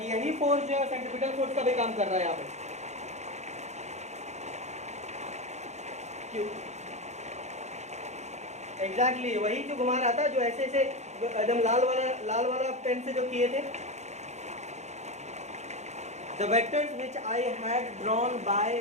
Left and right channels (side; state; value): left; late; 0.33 ms